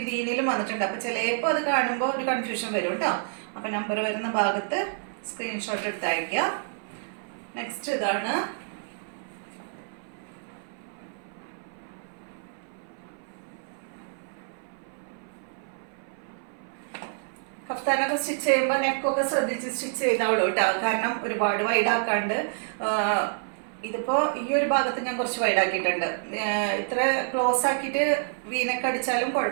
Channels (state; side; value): silent; left; 57 dB below the other